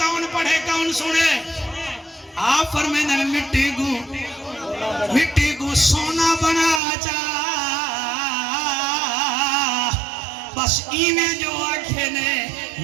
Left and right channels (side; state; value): left; drops out; at 6.8 s